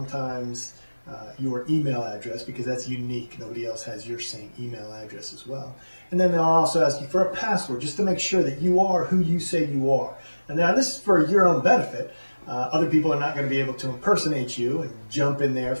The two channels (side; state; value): both; inverted; correlation -1.00